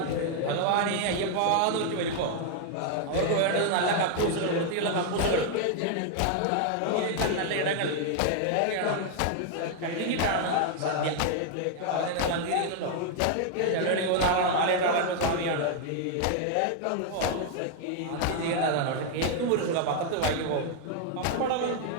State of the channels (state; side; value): different; both; correlation 0.00